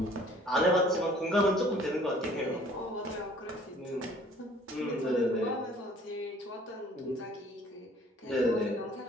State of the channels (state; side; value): normal; both; correlation 0.55